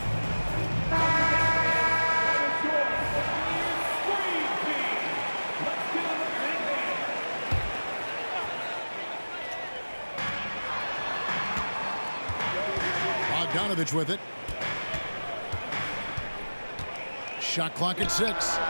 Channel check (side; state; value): both; inverted; correlation -1.00